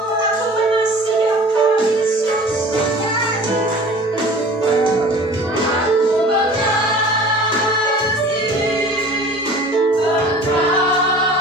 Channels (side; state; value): both; normal; correlation 0.44